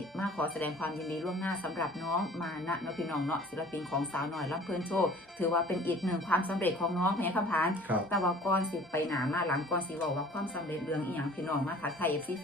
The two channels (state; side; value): normal; both; correlation 0.49